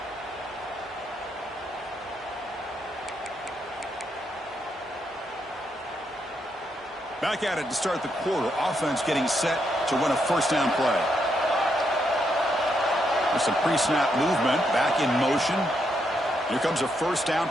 Back at it to start the quarter. Offense getting set to run a first down play. With some pre-snap movement, back in motion. Here comes a first down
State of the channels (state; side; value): normal; both; correlation 0.79